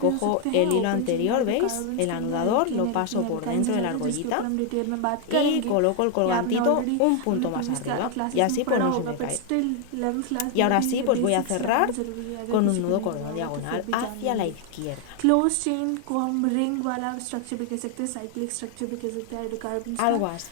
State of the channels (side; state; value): both; different; correlation 0.00